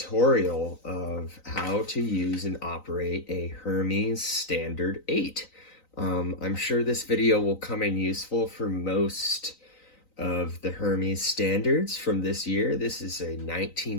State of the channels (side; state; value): right; late; 3.9 ms